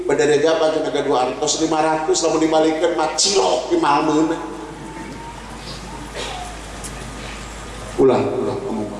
badare jabat cenah ka 200 500 lamun dibalikeun mah cilok di malmeuna. Ulah ngomong.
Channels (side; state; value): both; identical; correlation 1.00